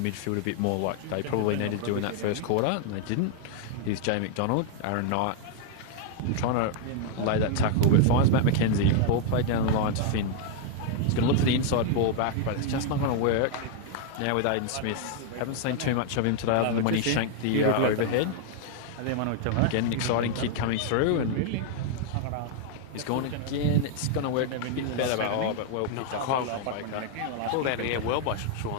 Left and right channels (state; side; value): different; both; correlation 0.00